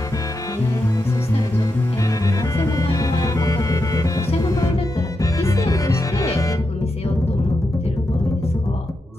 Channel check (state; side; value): normal; both; correlation 0.86